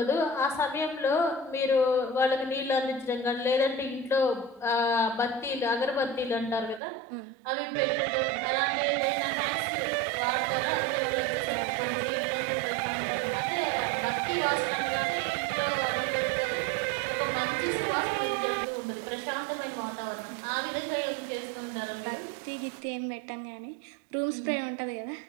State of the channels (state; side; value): drops out; left; at 6.8 s